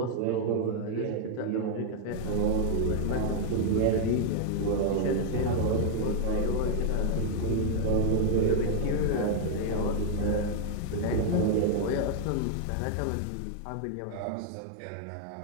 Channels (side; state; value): both; different; correlation 0.00